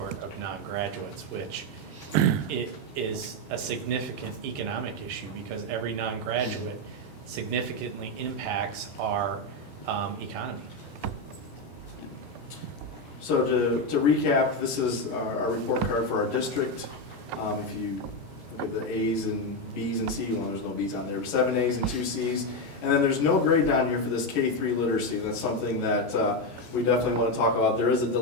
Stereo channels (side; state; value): both; normal; correlation 0.09